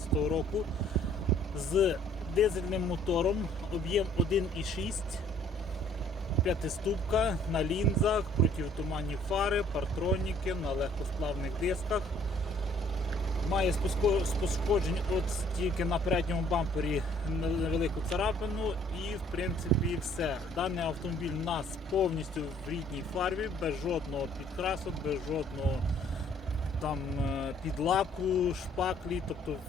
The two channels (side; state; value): both; normal; correlation 0.60